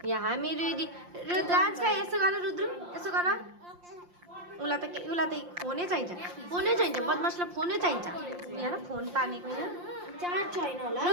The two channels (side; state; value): left; late; 5.7 ms